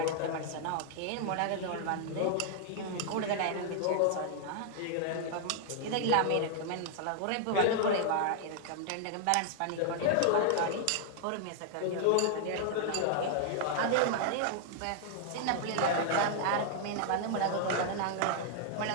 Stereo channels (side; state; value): both; different; correlation 0.00